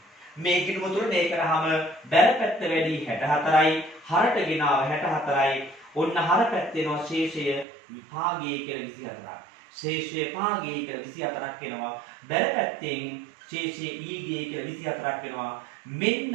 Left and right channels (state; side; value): drops out; left; at 7.7 s